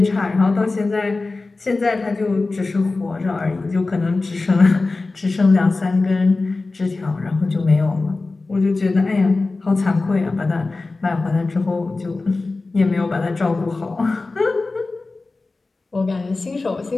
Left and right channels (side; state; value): right; quieter; 3.5 dB